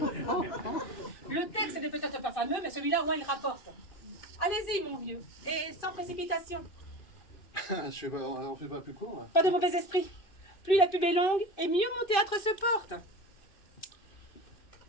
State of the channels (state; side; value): late; right; 2.6 ms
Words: Le texte n'est peut-être pas fameux, mais celui-là, au moins, il rapporte. Allez-y, mon vieux, et sans précipitation. On fait pas plus court, là. Pas de mauvais esprit. Plus la pub est longue, et mieux mon théâtre se porte.